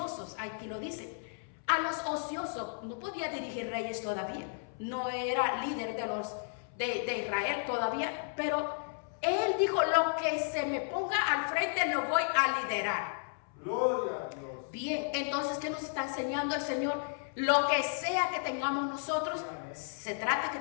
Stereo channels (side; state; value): right; silent; 55 dB below the other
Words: Aquí lo dice. A los ociosos. No podía dirigir reyes todavía. No era líder de Israel todavía. Pero él dijo, lo que se me ponga al frente lo voy a liderar. Gloria a Dios. Bien, entonces, ¿qué nos está enseñando el Señor? Lo que sea que tengamos nosotros, se trata que